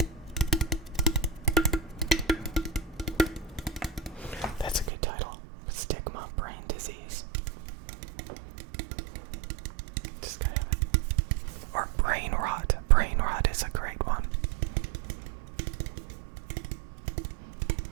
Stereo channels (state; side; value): drops out; left; at 4.9 s